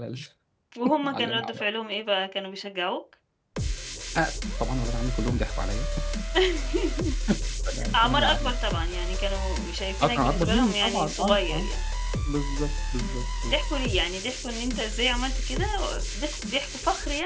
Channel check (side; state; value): both; identical; correlation 1.00